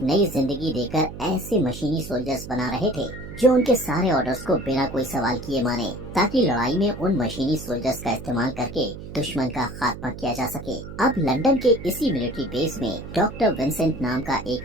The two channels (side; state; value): right; noise; hum, 12 dB below the sound